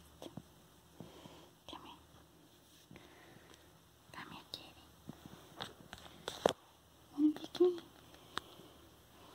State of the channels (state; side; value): identical; both; correlation 1.00